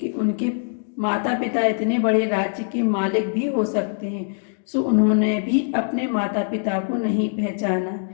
उनके माता पिता इतने बड़े राज्य के मालिक भी हो सकते हैं, सो उन्होंने भी अपने माता पिता को नहीं पहचाना।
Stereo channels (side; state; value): right; silent; digital silence